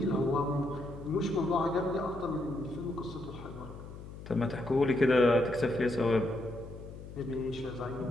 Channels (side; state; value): left; noise; hum, 13 dB below the sound